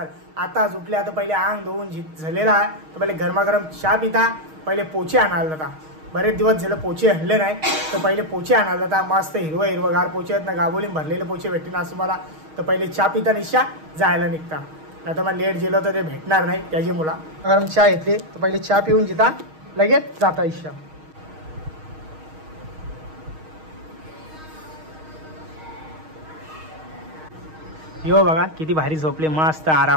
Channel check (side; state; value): left; late; 6.4 ms